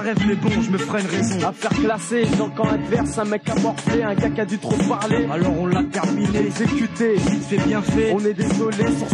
le rêve, mais bon, je me ferai une raison. Affaire classée, dans le camp adverse, un mec a morflé, un gars qui a dû trop parler. Alors on l'a terminé, exécuté, vite fait bien fait. On est désolé, sur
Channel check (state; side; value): identical; both; correlation 1.00